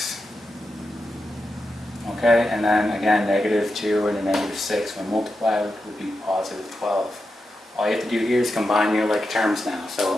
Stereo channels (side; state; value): both; normal; correlation 0.88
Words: Okay, and then again, negative 2 and a negative 6 when multiplied would be positive 12. All you have to do here is combine your like terms now.